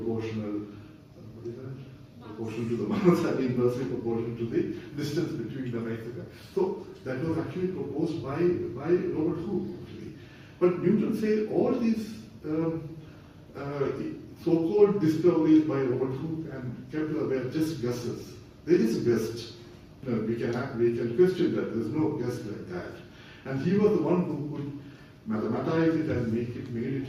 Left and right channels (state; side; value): identical; both; correlation 1.00